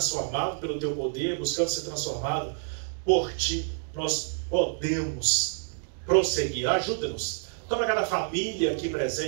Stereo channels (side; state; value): left; silent; digital silence